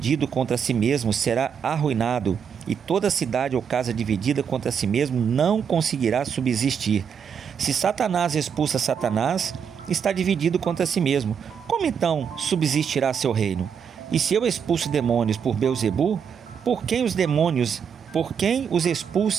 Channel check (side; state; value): left; quieter; 7.2 dB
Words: contra si mesmo será arruinado, e toda cidade ou casa dividida contra si mesmo não conseguirá subsistir. Se Satanás expulsa Satanás, está dividido contra si mesmo. Como então subsistirá seu reino? E se eu expulso demônios por Beelzebul, por quem os